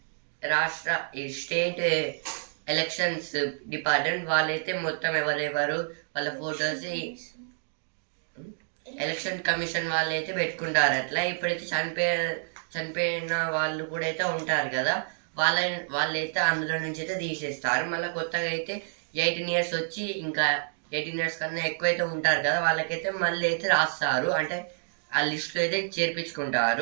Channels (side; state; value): left; silent; digital silence